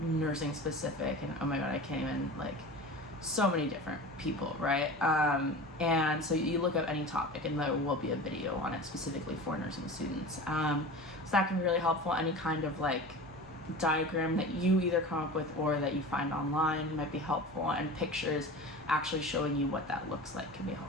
specific, and oh my god, I can't even, like, so many different people, right? And so you look up any topic and there will be a video on it specifically for nursing students. So that can be really helpful. Any kind of like diagram that you either come up with or that you find online might be helpful, and pictures actually showing you what that looks like can be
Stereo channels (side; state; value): both; normal; correlation 0.34